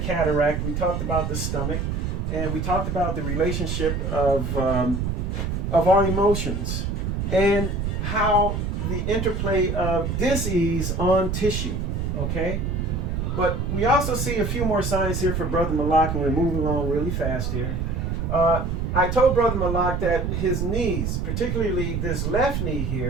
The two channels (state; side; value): noise; right; rumble, 1 dB below the sound